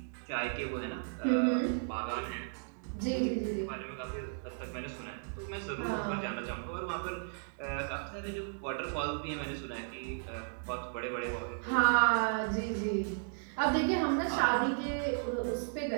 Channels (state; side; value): silent; left; digital silence